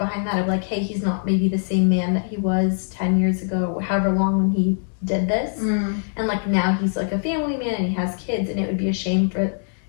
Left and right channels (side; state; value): right; silent; digital silence